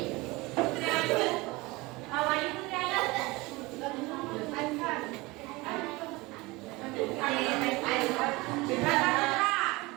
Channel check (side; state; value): left; quieter; 22.8 dB